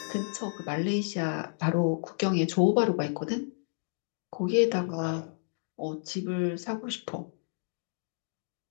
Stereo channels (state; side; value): silent; right; digital silence